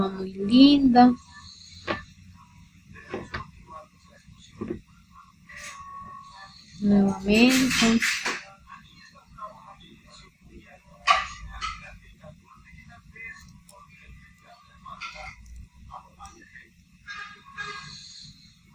muy linda. Nuevamente.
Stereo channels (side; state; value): both; identical; correlation 1.00